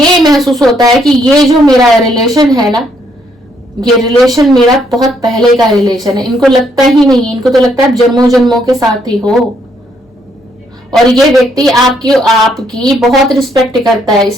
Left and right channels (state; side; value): normal; both; correlation 0.71